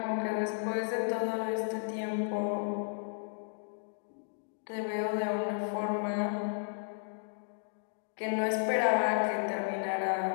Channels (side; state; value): right; silent; digital silence